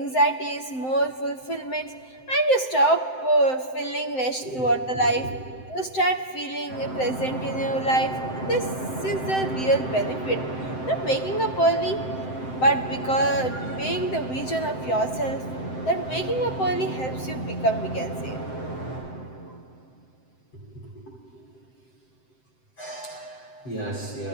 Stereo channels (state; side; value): late; right; 7.8 ms